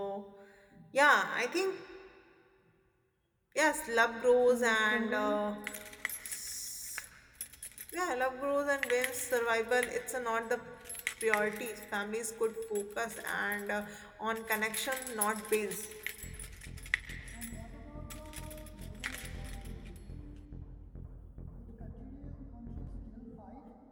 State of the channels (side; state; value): both; identical; correlation 1.00